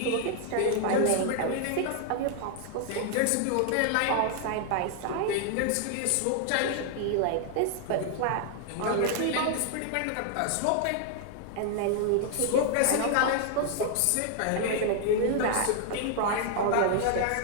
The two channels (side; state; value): both; different; correlation 0.00